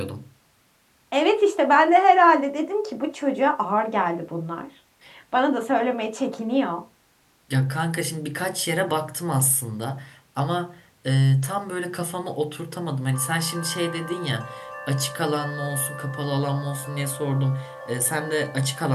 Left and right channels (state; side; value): identical; both; correlation 1.00